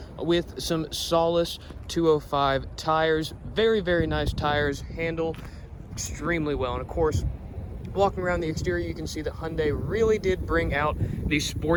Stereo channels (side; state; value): both; identical; correlation 1.00